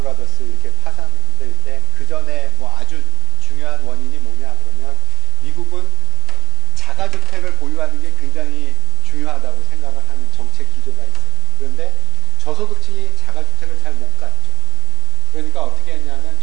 이렇게 파산될 때 그 전에 뭐 아주 중요한 원인이 뭐냐 그러면 미국은 자가주택을 보유하는 게 굉장히 중요하다고 생각을 하는 정책 기조가 있어요. 그런데 저소득층이 자가주택을 잘 못 갔죠. 그러니까 어떻게 했냐면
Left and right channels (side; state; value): left; quieter; 13.7 dB